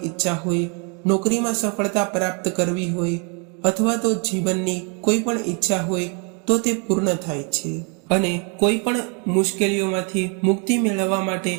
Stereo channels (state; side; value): quieter; left; 36.3 dB